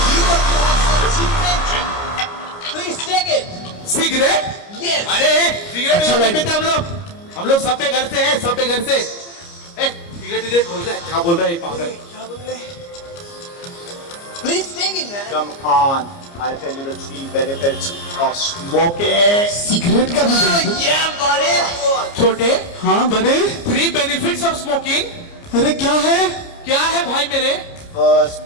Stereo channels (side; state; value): right; late; 29 ms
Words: You want to have some cigarette? Please take it. Cigarette? Yes. अरे सिगरेट नहीं पीते हम लोग सब पे घर से हैं, सब पे घर से। सिगरेट बोल रहा है, क्या बोल रहा है पागल? Please take it, man. Come on, I'll tell you the 3 benefits of smoking. Cigarette का भी Oh, yeah, buddy. छोटे, हाँ बड़े। 3 benefits of smoking. अरे क्या है? क्या है भाई मेरे? First